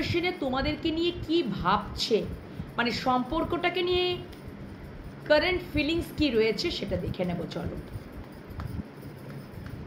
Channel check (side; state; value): both; identical; correlation 1.00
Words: তোমাদেরকে নিয়ে কি ভাবছে, মানে সম্পর্কটাকে নিয়ে কারেন্ট ফিলিংস কি রয়েছে সেটা দেখে নেব। চলো।